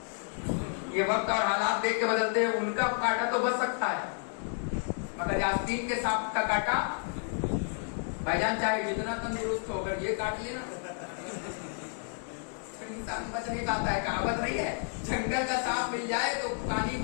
ये वक्त और हालात देख के बदलते हैं। उनका काटा तो बच सकता है, मगर यास्तीन के सांप का काटा भाईजान चाहे जितना तंदुरुस्त हो, अगर ये काट लेना तो इंसान बच नहीं पाता है। कहावत नहीं है, जंगल का सांप मिल जाए तो पानी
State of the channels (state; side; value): silent; right; 57 dB below the other